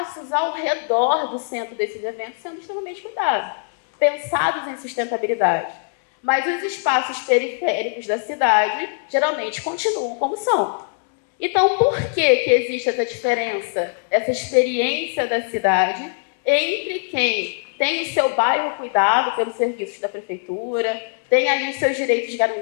ao redor do centro desses eventos sendo extremamente cuidados, pensados em sustentabilidade. Mas os espaços periféricos da cidade geralmente continuam como são. Então, por que existe essa diferença, essa experiência da cidade entre quem tem o seu bairro cuidado pelos serviços da prefeitura, tem ali os seus direitos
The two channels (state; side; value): silent; right; 64 dB below the other